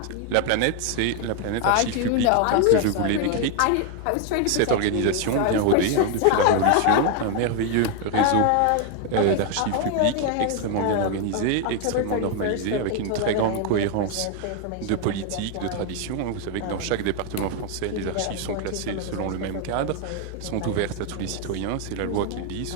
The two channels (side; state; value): both; different; correlation 0.00